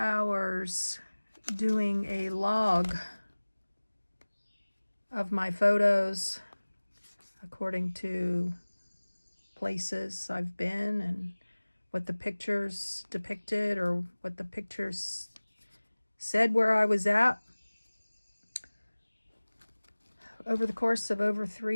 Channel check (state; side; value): inverted; both; correlation -1.00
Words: doing a log of my photos according to places I've been and what the pictures depicted or what the pictures said where I was at. Over the course of over